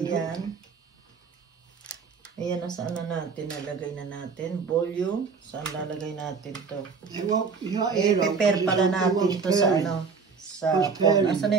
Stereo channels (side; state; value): left; quieter; 5.3 dB